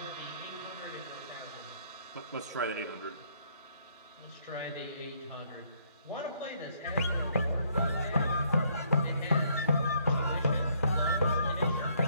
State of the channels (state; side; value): inverted; both; correlation -0.68